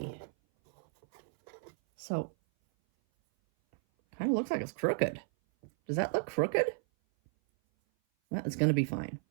So, kind of looks like it's crooked. Does that look crooked? Well, it's going to be fine.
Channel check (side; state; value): left; silent; 55 dB below the other